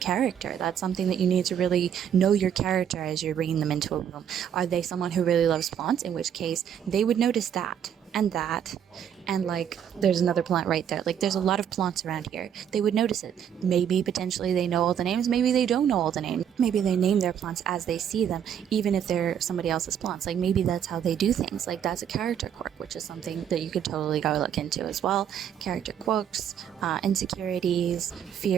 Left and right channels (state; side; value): quieter; left; 9.0 dB